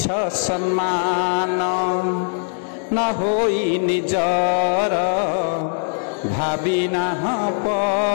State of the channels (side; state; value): right; silent; 55 dB below the other